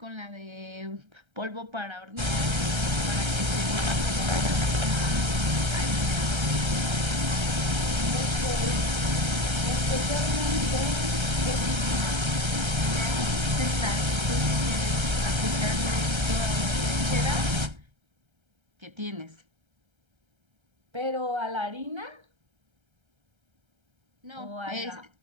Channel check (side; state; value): left; late; 1.3 ms